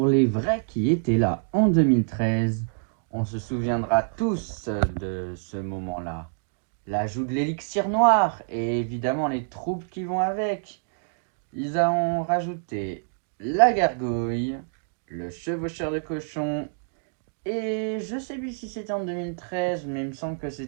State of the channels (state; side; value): silent; left; digital silence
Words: les vrais qui étaient là en 2013, on se souviendra tous de ce moment-là. L'ajout de l'élixir noir et évidemment les troupes qui vont avec. Ils ont rajouté la gargouille, le chevaucheur de cochon et je sais plus si c'était en 2013, mais il me semble que